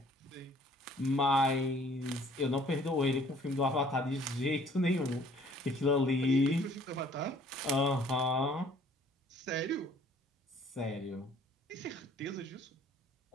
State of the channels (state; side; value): normal; both; correlation 0.57